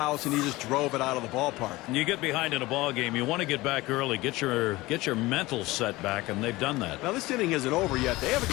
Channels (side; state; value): right; quieter; 19.9 dB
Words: and he just drove it out of the ballpark. You get behind in a ball game, you want to get back early, get your mental set back, and they've done that. Now this inning isn't over yet. They have